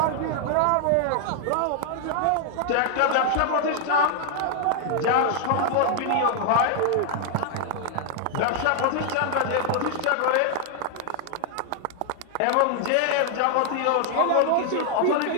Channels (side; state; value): both; different; correlation 0.00